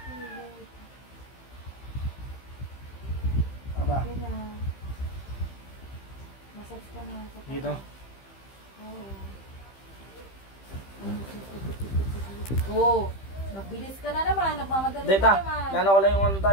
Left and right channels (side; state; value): right; late; 15 ms